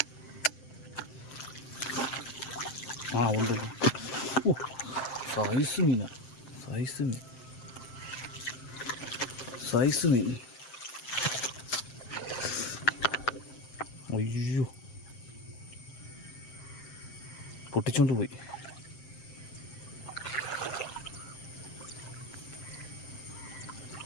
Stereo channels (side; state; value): right; late; 7.6 ms